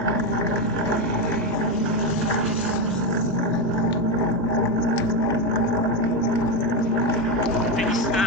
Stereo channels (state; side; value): normal; both; correlation 0.10